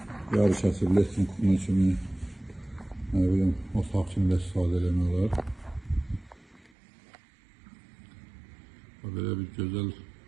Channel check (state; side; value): drops out; left; at 6.7 s